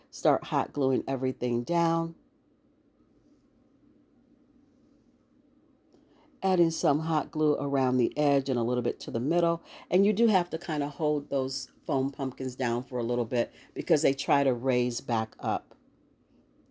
start hot gluing everything down. Adding some hot glue around the edge and a little bit to the middle. And you do have to kind of hold those foam pumpkins down for a little bit because they try to raise back up.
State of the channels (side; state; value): both; identical; correlation 1.00